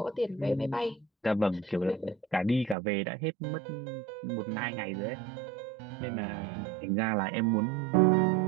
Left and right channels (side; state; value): left; drops out; at 2.8 s